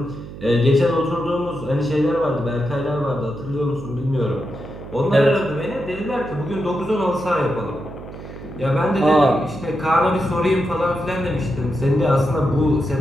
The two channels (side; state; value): right; noise; hum, 13 dB below the sound